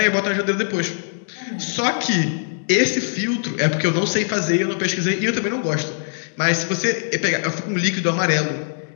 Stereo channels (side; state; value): right; silent; digital silence